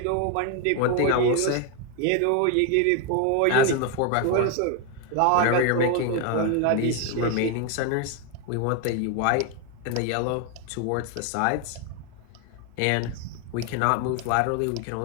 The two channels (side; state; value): both; different; correlation 0.01